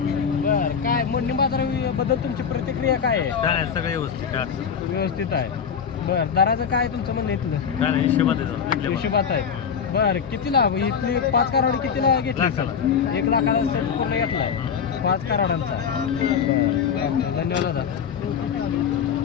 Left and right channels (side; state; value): right; quieter; 7.1 dB